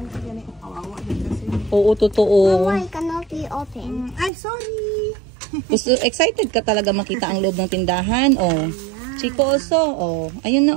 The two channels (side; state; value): left; drops out; at 4.3 s